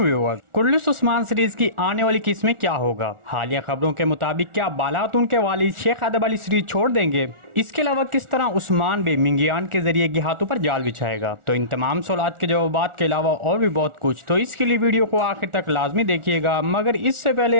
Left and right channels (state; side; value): late; left; 1.4 ms